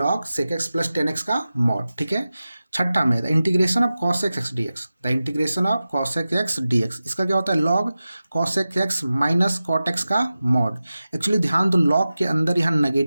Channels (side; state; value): both; inverted; correlation -0.95